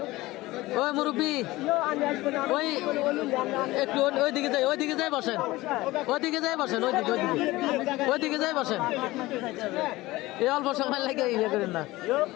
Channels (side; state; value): right; quieter; 19.0 dB